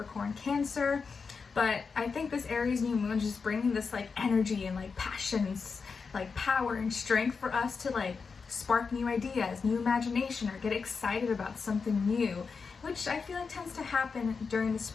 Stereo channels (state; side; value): quieter; right; 5.1 dB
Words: Cancer. But I think this Aries new moon is just bringing this like energy and like passions, like power and strength for us to like spark new ideas, new imagination, or get excited about something new, which I feel like tends to happen during the